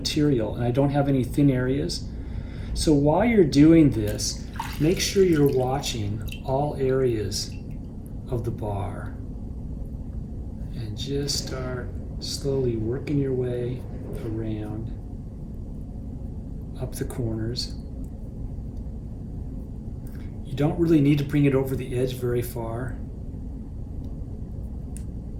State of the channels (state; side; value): identical; both; correlation 1.00